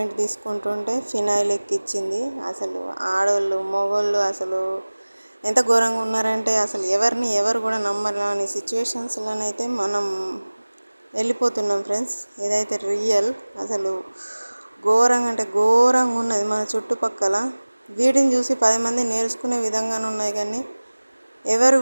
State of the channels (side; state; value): both; inverted; correlation -1.00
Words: తీసుకుంటుంటే ఫినాయిల్ ఎక్కిచ్చింది. అసలు ఆడవాళ్ళు మగవాళ్ళు అసలు ఎంత ఘోరంగా ఉన్నారంటే అసలు ఎవరు కూడా నమ్మరాని సిచ్యువేషన్స్లోనైతే మనం వెళ్ళిపోతున్నాం ఫ్రెండ్స్. ఇదైతే రియల్. అసలు ఘోరంగా అంటే ఘోరంగా ఉన్నది మన చుట్టుపక్కల. వీటిని చూసి 10 మంది నేర్చుకునే విధంగానే ఉన్నాయి, కానీ ఎవరు